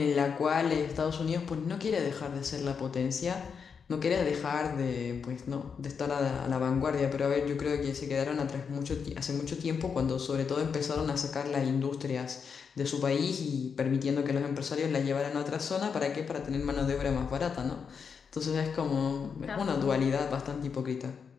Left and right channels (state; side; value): quieter; right; 6.2 dB